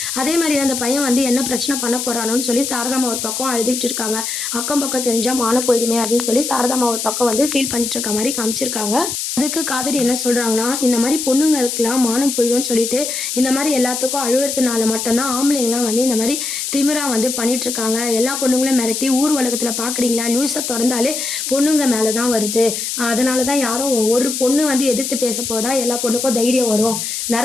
அதே மாரி அந்த பையன் வந்து என்ன பிரச்சனை பண்ண போறானோன்னு சொல்லி சாரதாம்மா ஒரு பக்கம் அழுதுகிட்டு இருக்காங்க. அக்கம் பக்கம் தெரிஞ்சா மானம் போயிடுமே அப்படின்னு சொல்லி சாரதாம்மா ஒரு பக்கம் வந்து ஃபீல் பண்ணிட்டு இருக்க மாரி காமிச்சிருக்காங்க. அதுக்கு காவேரி என்ன சொல்றாங்கன்னா, இந்த மாரி பொண்ணுங்களுக்குலாம் மானம் போயிடும்னு சொல்லிட்டு, இந்த மாரி எல்லாத்துக்கும் அழுவுறதுனால மட்டும் தான் ஆம்பளைங்கலாம் வந்து இந்த மாரி திமிரா வந்து பண்ணிட்டுருக்காங்க. எல்லா பொண்ணுங்களும் மிரட்டி ஊர் உலகத்துல பார்க்குறீங்களா? நியூஸ தொறந்தாலே பொண்ணுங்க மேல தான் வருது. அதனால தான் யாரும் ஒரு பொண்ணு வந்து எதிர்த்து பேசப்போ தான் எல்லா பொண்ணுக்கும் தைரியம் வரும்.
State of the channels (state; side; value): noise; left; hiss, 3 dB below the sound